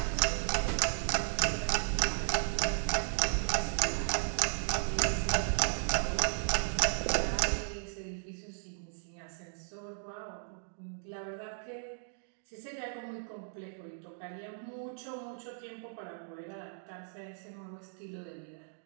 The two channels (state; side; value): silent; left; digital silence